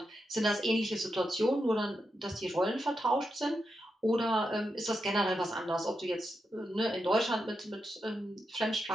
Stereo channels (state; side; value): normal; both; correlation 0.86